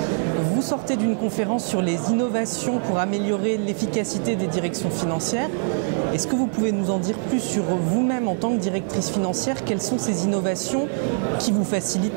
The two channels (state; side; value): silent; left; digital silence